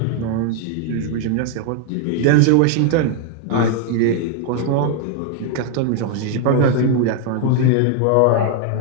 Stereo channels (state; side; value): different; both; correlation 0.00